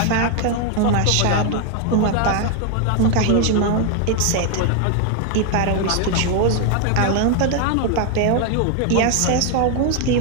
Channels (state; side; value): different; both; correlation 0.00